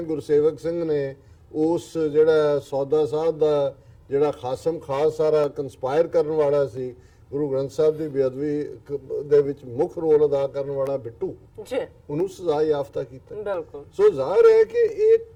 ਗੁਰਸੇਵਕ ਸਿੰਘ ਨੇ ਉਸ ਜਿਹੜਾ ਸੌਦਾ ਸਾਧ ਦਾ ਜਿਹੜਾ ਖਾਸਮ ਖਾਸ ਸਾਰਾ ਕੰਸਪਾਇਰ ਕਰਨ ਵਾਲਾ ਸੀ, ਗੁਰੂ ਗ੍ਰੰਥ ਸਾਹਿਬ ਦੀ ਬੇਅਦਬੀ ਦੇ ਵਿੱਚ ਮੁੱਖ ਰੋਲ ਅਦਾ ਕਰਨ ਵਾਲਾ ਬਿੱਟੂ, ਉਹਨੂੰ ਸਜ਼ਾ ਯਾਫਤਾ ਕੀਤਾ। ਬਿਲਕੁਲ। ਸੋ ਜ਼ਾਹਿਰ ਹੈ ਕਿ ਇਹ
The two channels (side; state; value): both; identical; correlation 1.00